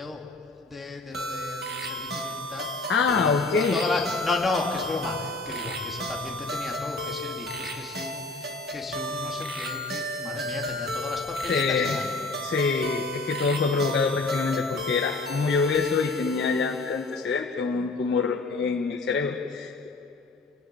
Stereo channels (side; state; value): right; quieter; 3.4 dB